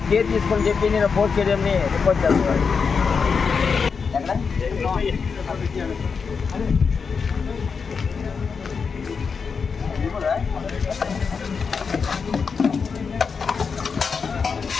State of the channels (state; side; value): quieter; right; 5.5 dB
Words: కేర్ తీసుకొని చెప్పి నేను పోస్ట్ స్టేడియంని రిపోర్ట్ చేస్తున్నాను.